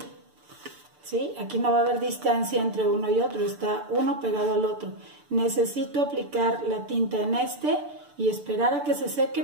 ¿sí? Aquí no va a haber distancia entre uno y otro, está uno pegado al otro. Necesito aplicar la tinta en y esperar a que se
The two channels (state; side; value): late; left; 6.8 ms